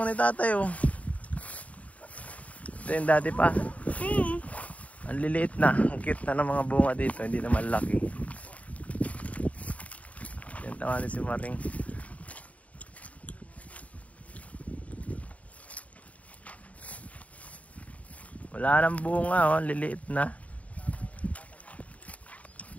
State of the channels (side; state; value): right; late; 0.068 ms